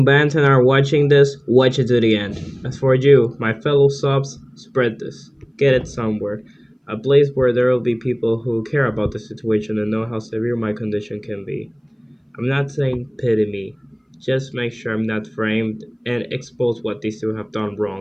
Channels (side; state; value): both; identical; correlation 1.00